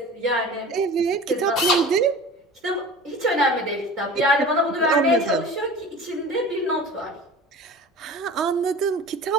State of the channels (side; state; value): both; normal; correlation 0.39